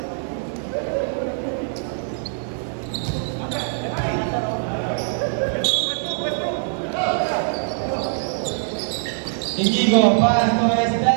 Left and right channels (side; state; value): left; silent; 62 dB below the other